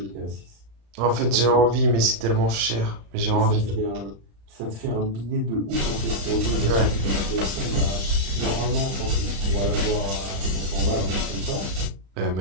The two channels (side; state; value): left; late; 35 ms